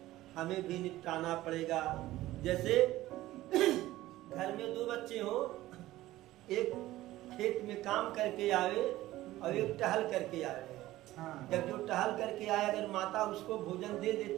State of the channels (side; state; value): left; quieter; 16.2 dB